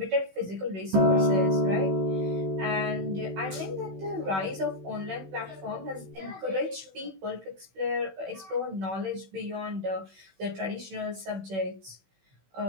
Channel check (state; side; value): late; left; 16 ms